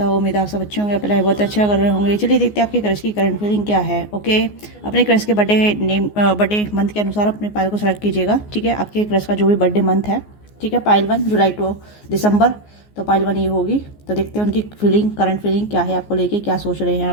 उम्मीद है आप सब अच्छे होंगे, अपना बहुत अच्छा कर रहे होंगे। चलिए देखते हैं आपके क्रश की करंट फीलिंग क्या है। ओके, अपने क्रश के बर्थडे मंथ के अनुसार अपने पायल को सेलेक्ट कीजिएगा। ठीक है, आपके क्रश का जो भी बर्थडे मंथ है, ठीक है, पायल 1 जुलाई टू दिसंबर, तो पायल 1 ये होगी। तो देखते हैं उनकी फीलिंग, करंट फीलिंग क्या है, आपको लेके क्या सोच रहे हैं,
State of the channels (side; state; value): right; late; 14 ms